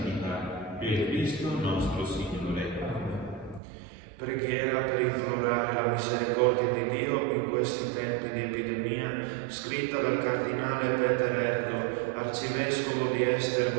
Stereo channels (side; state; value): left; drops out; at 3.6 s